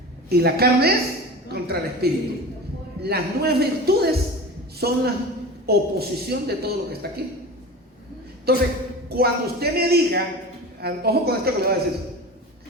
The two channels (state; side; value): normal; both; correlation 0.32